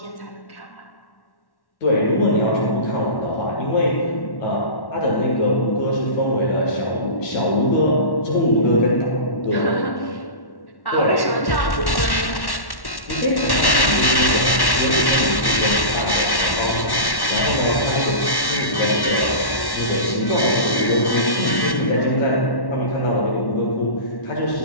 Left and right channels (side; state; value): right; late; 1.1 ms